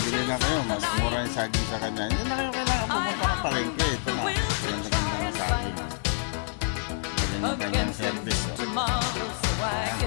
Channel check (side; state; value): right; silent; digital silence